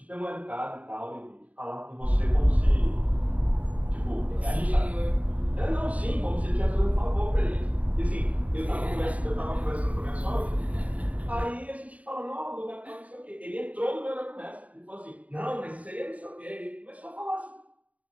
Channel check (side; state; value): left; late; 0.069 ms